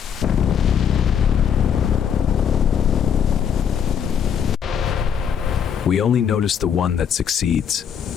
We only notice the one that succeeds.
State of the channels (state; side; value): quieter; right; 8.0 dB